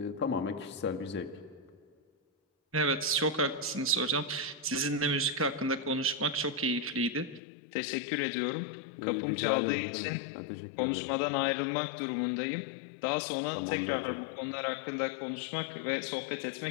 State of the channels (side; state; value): right; drops out; at 7.4 s